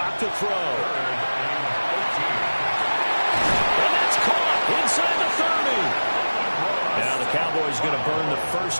to throw. And that's caught inside the 30. Now the Cowboys going to burn the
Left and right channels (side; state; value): both; inverted; correlation -1.00